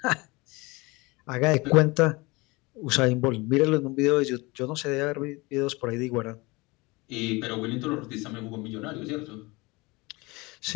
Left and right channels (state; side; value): quieter; right; 24.2 dB